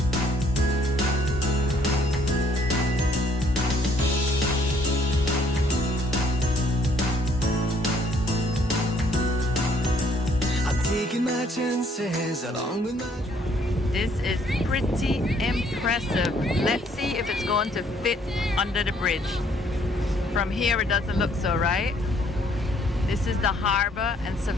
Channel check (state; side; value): normal; both; correlation 0.64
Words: Taking my chances along with my... This is pretty impressive. Let's see if it's going to fit under the bridge. From here it doesn't look so, right? This is the harbor in